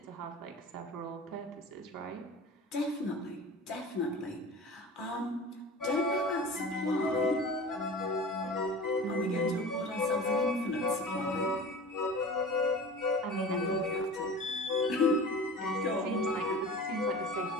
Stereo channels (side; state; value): both; normal; correlation 0.36